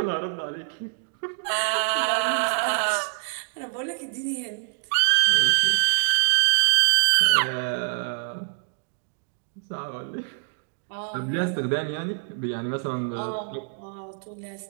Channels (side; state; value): left; silent; digital silence